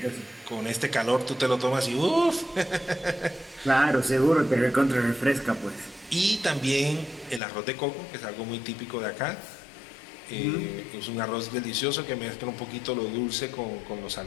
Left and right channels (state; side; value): drops out; right; at 7.4 s